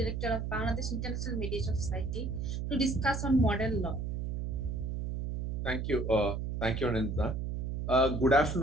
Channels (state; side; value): noise; right; hum, 3 dB below the sound